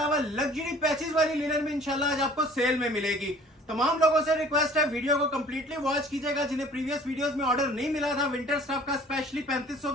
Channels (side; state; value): both; normal; correlation 0.50